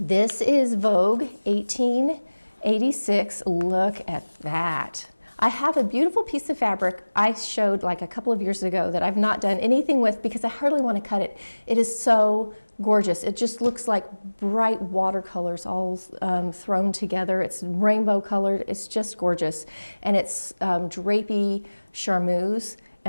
is Vogue 1886. Look at that. I have a beautiful piece of fabric I showed like a couple of years ago that I've not done anything with because I hardly want to cut it. It is so gorgeous. It just looks like bright watercolors all thrown together. It's rainbow colored. It's just gorgeous. And it's drapey charmeuse,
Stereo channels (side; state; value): both; inverted; correlation -1.00